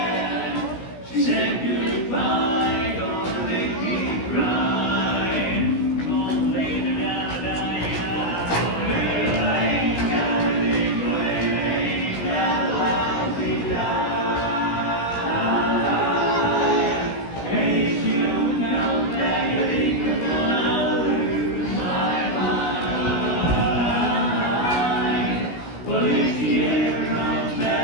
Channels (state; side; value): late; right; 16 ms